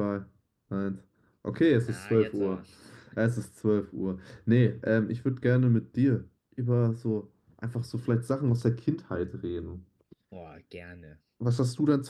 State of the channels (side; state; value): both; identical; correlation 1.00